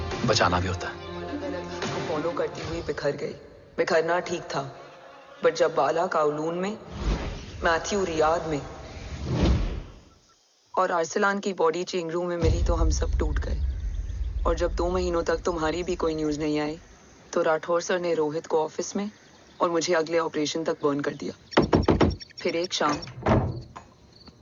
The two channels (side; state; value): both; identical; correlation 1.00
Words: बचाना भी होता है. उसको फॉलो करती हुई बिखर गई. बिखरना ठीक था, बट जब बाला काउलून में, मैथ्यू रियाद में और आर्सलान की बॉडी चेंज रूम में मिली तो हम सब टूट गए. और जब 2 महीनों तक तुम्हारी भी कोई न्यूज नहीं आई तो राठौर सर ने रोहित को ऑफिस में और मुझे अगले ऑपरेशन तक बर्न कर दिया. फिर एक शाम